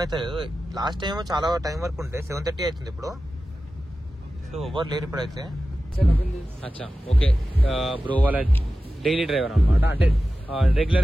లాస్ట్ టైం చాలా టైం వరకు ఉంటే 7:30 అవుతుంది ఇప్పుడు. సో ఎవరు లేరు ఇప్పుడైతే. అచ్చా ఓకే, బ్రో వాళ్ళ డైలీ డ్రైవర్ అనమాట, అంటే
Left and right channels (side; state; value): both; normal; correlation 0.94